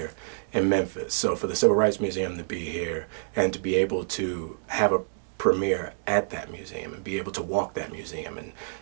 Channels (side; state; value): left; silent; digital silence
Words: in Memphis. So for the Civil Rights Museum to be here and to be able to have a premiere at that museum and be able to walk that museum and,